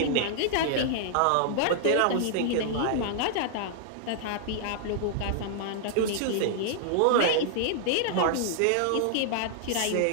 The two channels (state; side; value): different; both; correlation -0.01